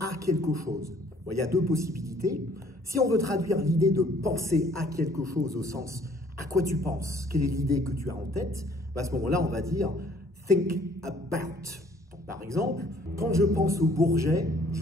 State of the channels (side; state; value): both; normal; correlation 0.59